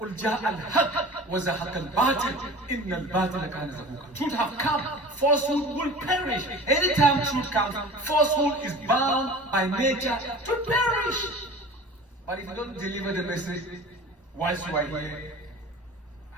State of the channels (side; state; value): both; normal; correlation 0.39